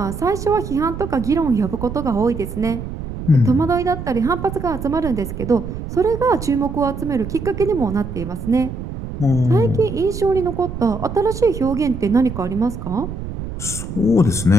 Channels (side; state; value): right; noise; rumble, 8 dB below the sound